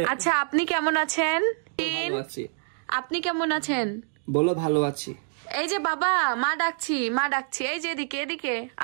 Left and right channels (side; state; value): left; silent; 61 dB below the other